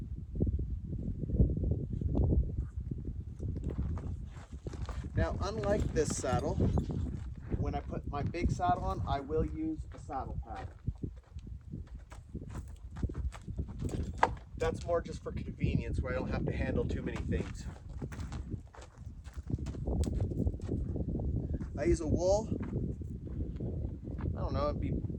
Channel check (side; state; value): both; identical; correlation 1.00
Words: Now, unlike this saddle, when I put my big saddle on, I will use a saddle pad. That's more just for convenience, where I don't have to handle too many things. I use a wool, I don't know, it'd be